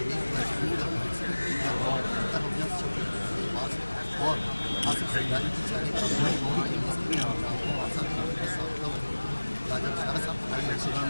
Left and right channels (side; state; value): both; inverted; correlation -1.00